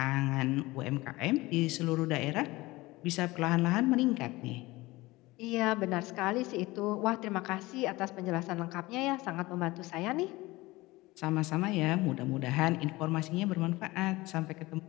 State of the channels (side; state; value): right; quieter; 20.4 dB